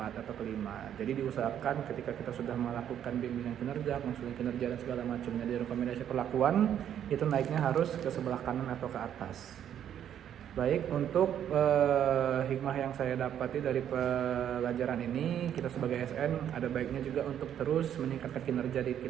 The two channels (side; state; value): left; quieter; 9.9 dB